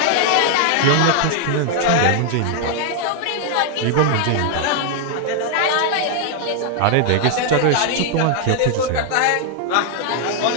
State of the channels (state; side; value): different; both; correlation 0.00